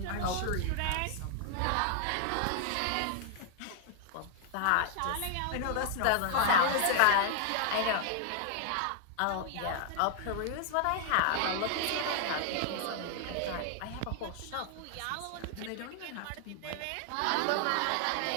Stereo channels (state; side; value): different; both; correlation 0.00